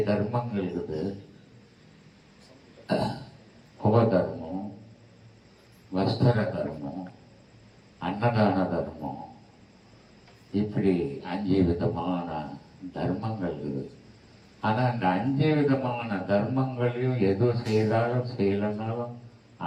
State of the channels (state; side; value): identical; both; correlation 1.00